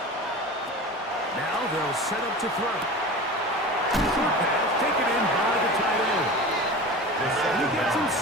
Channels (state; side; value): normal; both; correlation 0.33